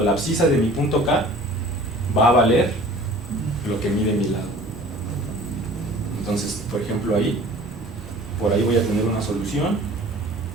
la abscisa de mi punto K va a valer lo que mide mi lado. Entonces, por ejemplo, por ahí voy a tener una solución,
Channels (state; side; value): normal; both; correlation 0.47